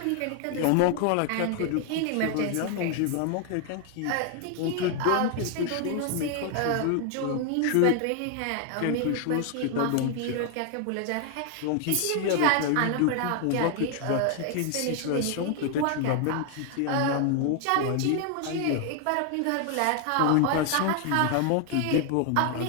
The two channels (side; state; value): both; different; correlation 0.01